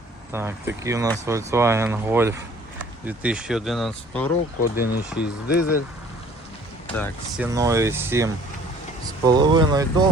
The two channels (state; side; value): normal; both; correlation 0.54